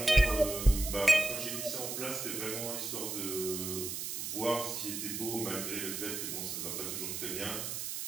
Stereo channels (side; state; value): right; noise; hiss, 4 dB below the sound